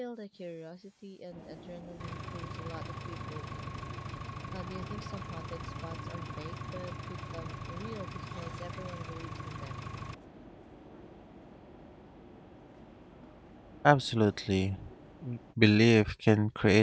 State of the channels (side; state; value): both; identical; correlation 1.00